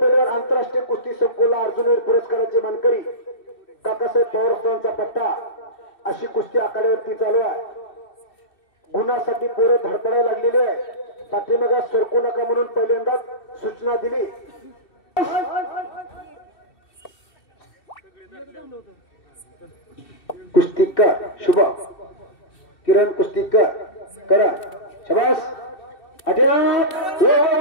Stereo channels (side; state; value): right; late; 2.7 ms